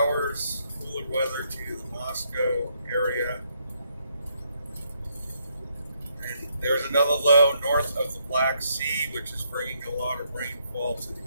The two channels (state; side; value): inverted; both; correlation -0.74